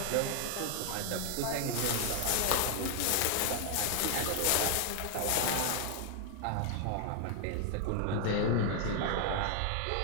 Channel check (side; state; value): both; different; correlation 0.00